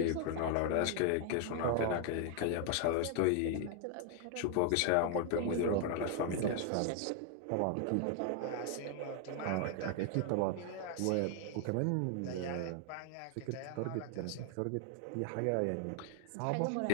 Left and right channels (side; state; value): both; different; correlation 0.00